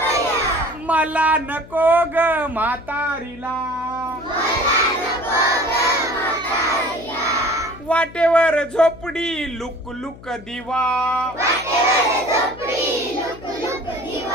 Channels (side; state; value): left; noise; hum, 19 dB below the sound